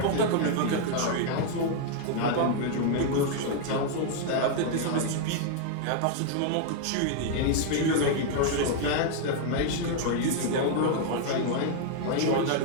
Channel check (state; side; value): different; both; correlation 0.00